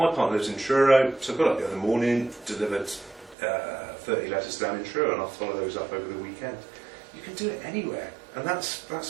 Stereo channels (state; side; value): drops out; left; at 3.4 s